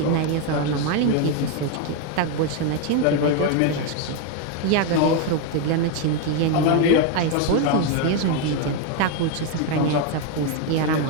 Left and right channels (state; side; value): different; both; correlation 0.01